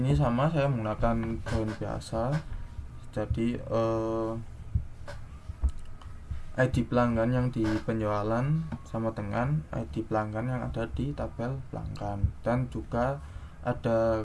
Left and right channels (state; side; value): identical; both; correlation 1.00